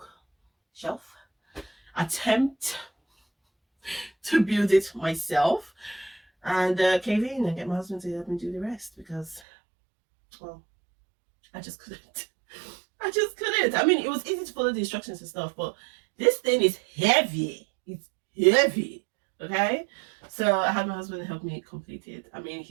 shelf, attempt to build it myself, and cave in and get my husband to help me do the rest because, well, I just couldn't. I mean, it was easy to follow the instructions and stuff, but this thing is heavy. It's heavy. Okay, so I had my husband help me complete it. I mean,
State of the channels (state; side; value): drops out; left; at 9.4 s